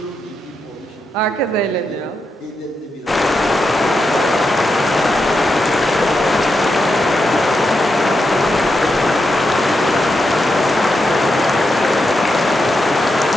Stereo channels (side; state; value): both; normal; correlation 0.85